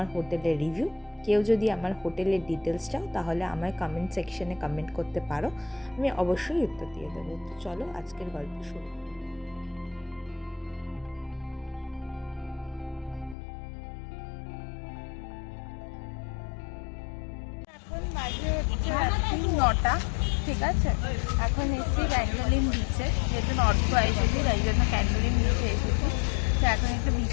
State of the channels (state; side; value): drops out; right; at 13.4 s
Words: হোটেলের রিভিউ। কেউ যদি আমার হোটেলের ডিটেলস চাও তাহলে আমায় কমেন্ট সেকশনে কমেন্ট করতে পারো, আমি অবশ্যই উত্তর দিয়ে দেবো। তো চলো আজকের গল্প শুরু। এখন বাজে হচ্ছে রাত্রি 9টা, ঠিক আছে। এখন এসেছি ক্যান্ডোলিম বিচে, যেহেতু নর্থ গোয়া এসেছি তাই জন্য ক্যান্ডোলিম বিচে এসেছি। তো এখন একটু